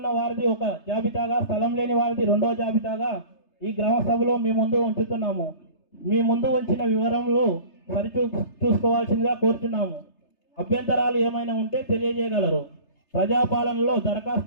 వారిది ఒక జాబితాగా, స్థలం లేని వారిది 2వ జాబితాగా ఈ గ్రామ సభలో మీ ముందు ఉంచుతున్నాము. మీ ముందు ఉంచిన వివరములు చూసుకోవాల్సిందిగా కోరుచున్నాము. అభ్యంతరాలు ఏమైనా ఉంటే తెలియజేయగలరు. ప్రజాపాలనలో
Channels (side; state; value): right; late; 3.3 ms